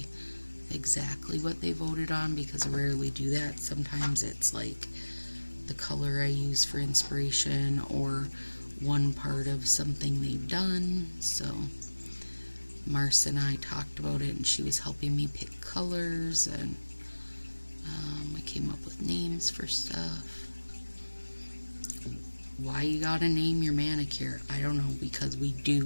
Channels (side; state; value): both; inverted; correlation -1.00